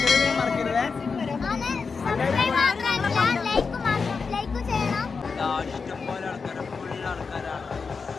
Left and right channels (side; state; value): right; quieter; 5.0 dB